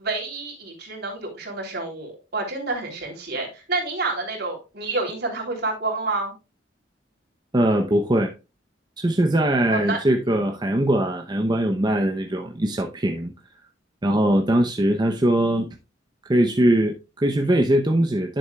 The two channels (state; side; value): normal; both; correlation 0.70